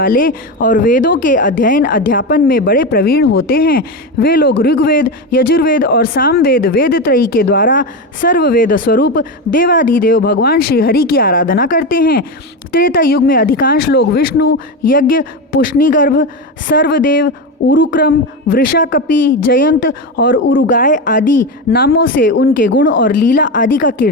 और वेदों के अध्ययन अध्यापन में बड़े प्रवीण होते हैं। वे लोग ऋग्वेद, यजुर्वेद और सामवेद वेद त्रयी के द्वारा सर्ववेद स्वरूप देवाधिदेव भगवान श्री हरि की आराधना करते हैं। त्रेता युग में अधिकांश लोग विष्णु, यज्ञ, पुष्णिगर्भ, सर्वदेव, उरुक्रम, वृषाकपि, जयंत और उरुगाय आदि नामों से उनके गुण और लीला आदि का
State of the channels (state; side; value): normal; both; correlation 0.16